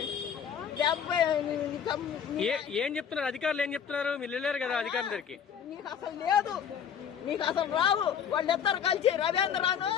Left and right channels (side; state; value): right; quieter; 8.0 dB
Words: 70. ఏం చెప్తున్నారు అధికారులు? ఏం చెప్తున్నారు? మీరు వెళ్ళారు కదా అధికారుల దగ్గరికి. నీకు అసలు లేదు, నీకు అసలు రావు. వాళ్ళిద్దరు కలిసి రవీంద్రను